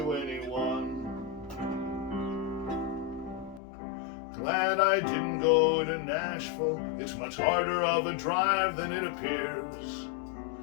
anyone. Glad I didn't go to Nashville, it's much harder of a drive than it appears.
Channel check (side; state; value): right; drops out; at 3.6 s